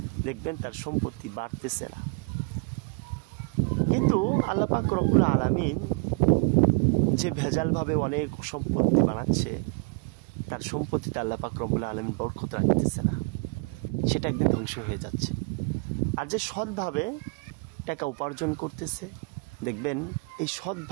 দেখবেন তার সম্পত্তি বাড়তেছে না। কিন্তু আল্লাহ পাক রব্বুল আলামিন যে ভেজালভাবে অনেক সম্পত্তি বানাচ্ছে, তার সম্পত্তিতে আল্লাহ পাক রব্বুল আলামিন বরকত রাখতেছে না, সেটা একদিন ধ্বংস হয়ে যাচ্ছে। আর যে সৎভাবে টাকা উপার্জন করতেছে দেখবেন এই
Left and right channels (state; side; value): quieter; left; 33.3 dB